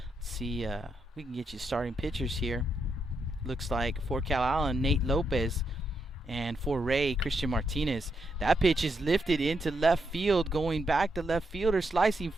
Let's see, we can get you starting pitchers here. Looks like for Calallen, Nate Lopez. And for Ray, Christian Martinez. That pitch is lifted into left field, going back to left fielder, slicing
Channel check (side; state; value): both; normal; correlation 0.81